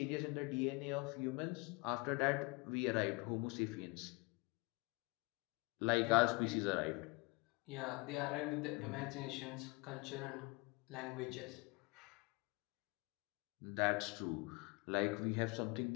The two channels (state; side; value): quieter; right; 27.9 dB